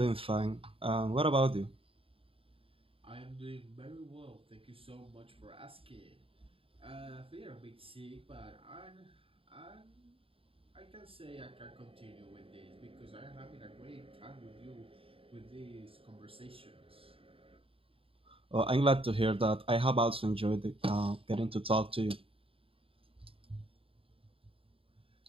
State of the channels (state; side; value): late; left; 0.27 ms